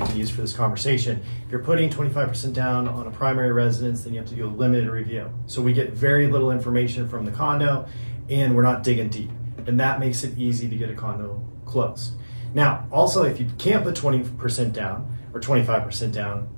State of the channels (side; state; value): both; inverted; correlation -1.00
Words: can use for this conversation. If you're putting 25% down on a primary residence, then you have to do a limited review. So we get very little information from the condo, and we're not digging deep. And that makes it easy to get a condo closed. Now, also, if you can't put 20% down or 25% down